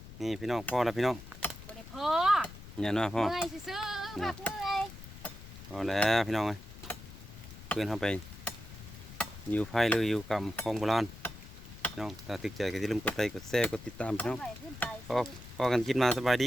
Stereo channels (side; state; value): left; noise; rumble, 15 dB below the sound